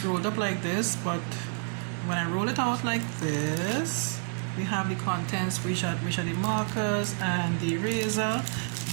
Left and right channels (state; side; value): silent; left; 58 dB below the other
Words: rolled up like this, but when I roll it out like this, we have the contents, which are the markers and the eraser.